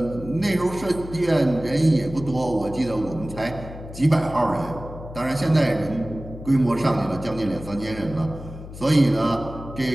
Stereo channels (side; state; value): left; noise; hum, 13 dB below the sound